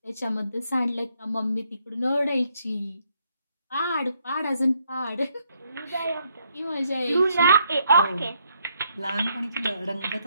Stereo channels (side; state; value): both; inverted; correlation -0.73